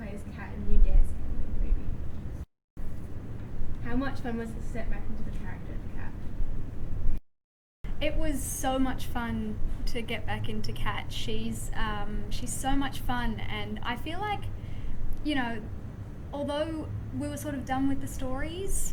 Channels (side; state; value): both; identical; correlation 1.00